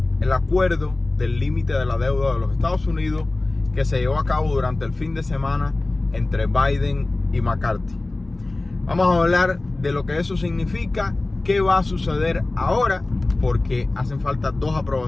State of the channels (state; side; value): quieter; right; 3.0 dB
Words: el acuerdo del límite de la deuda de los Estados Unidos que se llevó a cabo durante el fin de semana entre Biden y McCarthy. Vamos a hablar de lo que eso significa, qué va a suceder ahora, porque hacen falta 2